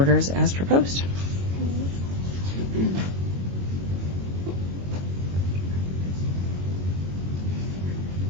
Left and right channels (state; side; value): late; left; 22 ms